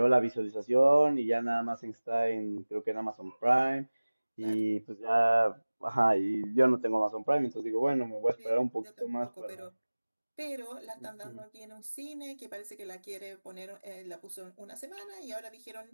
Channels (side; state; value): both; inverted; correlation -1.00